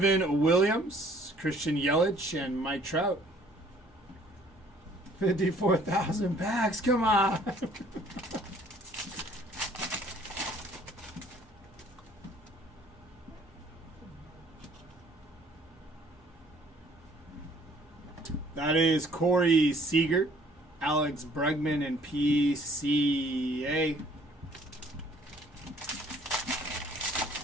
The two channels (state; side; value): normal; both; correlation 0.58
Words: Williams, Christian Yelich, and Mike Trout. 54,000 packs. Come on. That is Corey Seager, Alex Bregman, and PCA.